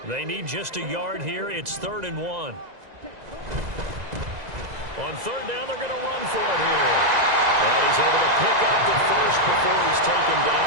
They need just a yard here. It's 3rd and 1. On 3rd down, they're going to run for it here. And he's able to pick up the first before he's taken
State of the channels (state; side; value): late; left; 2.0 ms